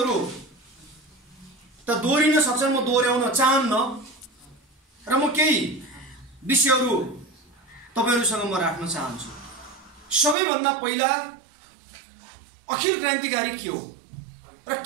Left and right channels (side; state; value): left; drops out; at 10.4 s